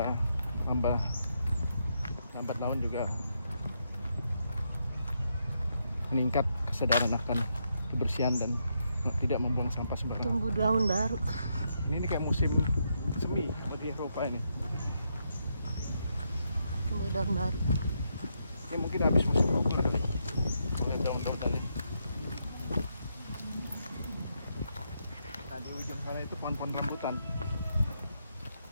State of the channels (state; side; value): inverted; both; correlation -0.80